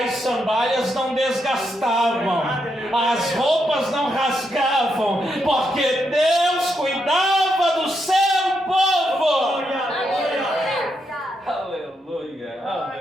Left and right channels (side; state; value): both; normal; correlation 0.81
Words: sandálias não desgastavam, as roupas não rasgavam, porque Deus cuidava do seu povo. Aleluia,